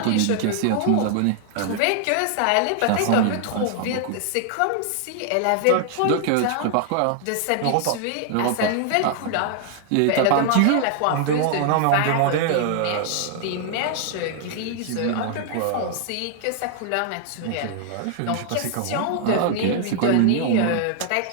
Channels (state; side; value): different; both; correlation 0.00